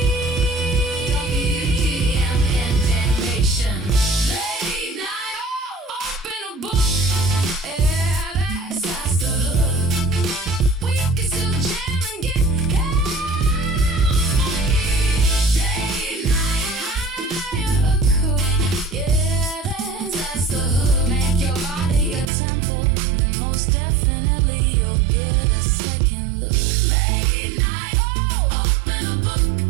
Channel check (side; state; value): left; drops out; at 22.3 s